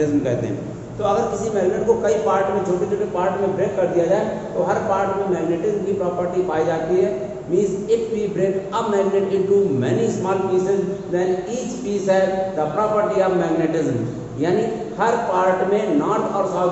कहते हैं। तो अगर किसी मैग्नेट को कई पार्ट में छोटे छोटे पार्ट में ब्रेक कर दिया जाए तो हर पार्ट में मैग्नेटिज्म की प्रॉपर्टी पाई जाती है। Means if we break a magnet into many small pieces then each piece have the property of magnetism, यानी हर पार्ट में नॉर्थ और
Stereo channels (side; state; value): both; identical; correlation 1.00